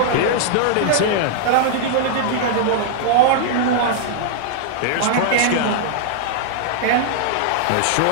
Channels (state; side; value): different; both; correlation -0.01